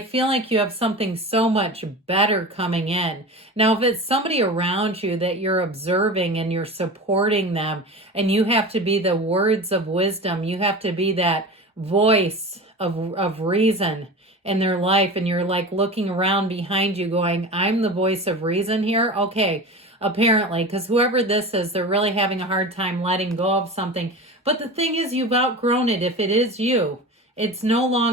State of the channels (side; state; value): both; normal; correlation 0.31